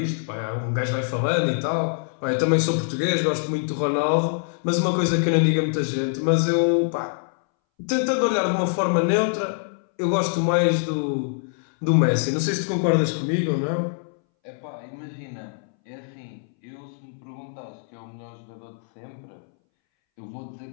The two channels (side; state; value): right; silent; 62 dB below the other